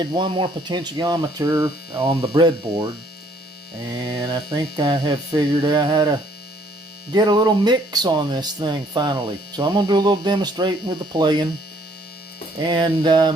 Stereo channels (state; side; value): normal; both; correlation 0.63